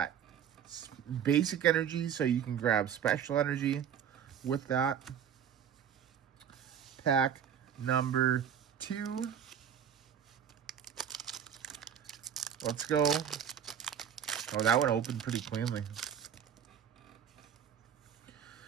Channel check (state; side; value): quieter; left; 8.6 dB